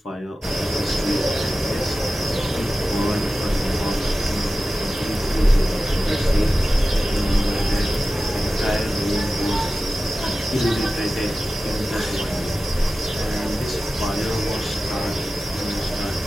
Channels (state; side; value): normal; both; correlation 0.94